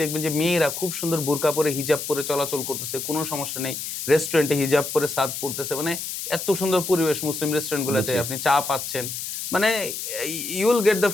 দেখবেন যে মেয়েরা খুব সুন্দর বোরকা পরে, হিজাব পরে চলাচল করতেছে, কোনো সমস্যা নেই। রেস্টুরেন্টে হিজাব পরে সার্ভ করতেছে, মানে এত সুন্দর পরিবেশ মুসলিম রেস্টুরেন্টগুলোতে। বুঝছি। আপনি চা পাচ্ছেন। মানে you will get the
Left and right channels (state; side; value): noise; left; hiss, 6 dB below the sound